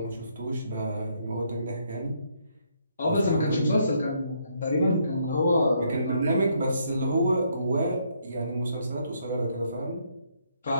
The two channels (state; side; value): inverted; both; correlation -0.72